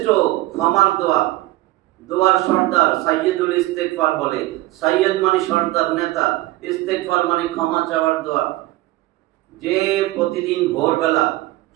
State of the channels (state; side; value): quieter; left; 17.7 dB